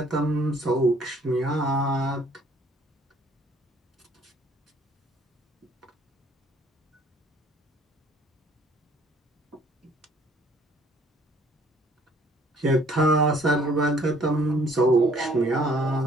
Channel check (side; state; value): both; normal; correlation 0.59